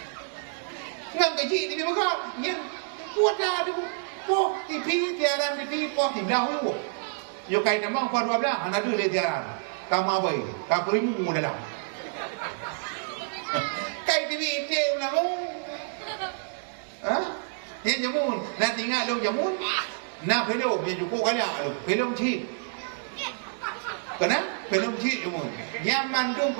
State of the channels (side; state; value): left; silent; digital silence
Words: Ngang kecil di bawah, yang kuat dah tu, po tipi tiaran tipi po tipi dah hu. Yo kai nama po 12, hana tu le tiaran. Kamu apa? Kamu rimu dah. Kai tipi je ulang. Hah? Yang jamun, nak tinggal dong jamun. Nak pelong yang cukup kali ah, pelong cip. Kenapa? Pelong cip jamun. Yang mandung